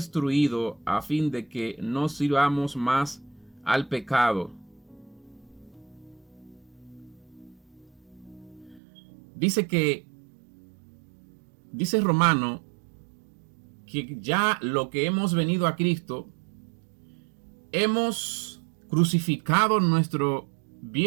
a fin de que no sirvamos más al pecado. Dice Romano, que ya lo que hemos venido a Cristo, hemos crucificado nuestro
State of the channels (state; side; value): drops out; left; at 8.8 s